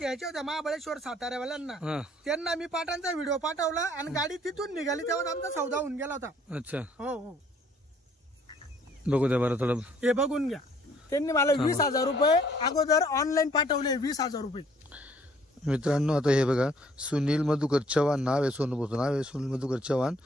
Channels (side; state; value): both; normal; correlation 0.61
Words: होत्या महाबळेश्वर साताऱ्यावाल्यांना त्यांना मी पाटांचा व्हिडिओ पाठवला आणि गाडी तिथून निघाली तेव्हा आमचा सौदा होऊन गेला होता. अच्छा हो हो बघू द्या बरं थोडं. हे बघून घ्या. त्यांनी मला 20,000 रुपये अगोदर ऑनलाईन पाठवले. 20,000 रुपये. मित्रांनो आता हे बघा सुनील मधुकर चव्हाण नाव आहे. सोनूचं नाव आहे सुनील मधुकर चव्हाण.